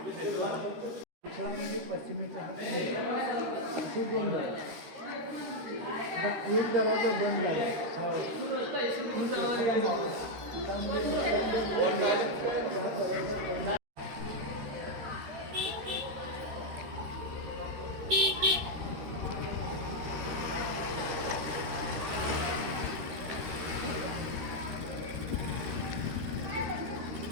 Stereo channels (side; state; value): left; late; 13 ms